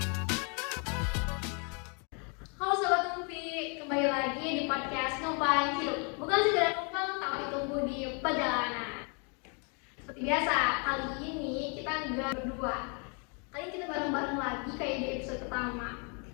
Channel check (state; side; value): quieter; right; 36.4 dB